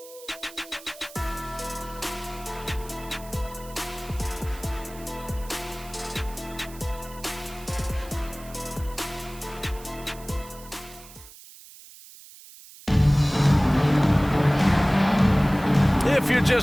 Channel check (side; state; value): right; noise; hiss, 19 dB below the sound